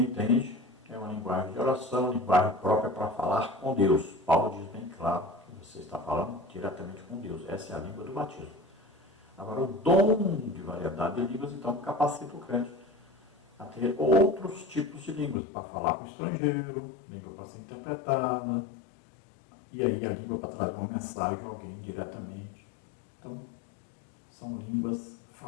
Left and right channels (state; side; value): drops out; right; at 15.4 s